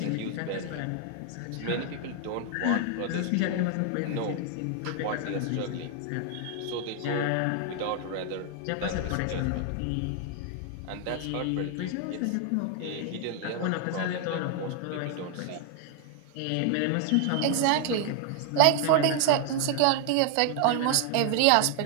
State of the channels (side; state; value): both; different; correlation 0.00